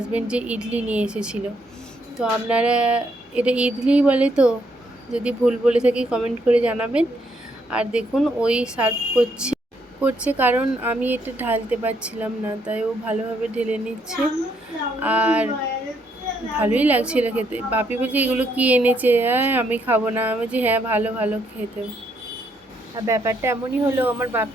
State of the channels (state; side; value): normal; both; correlation 0.73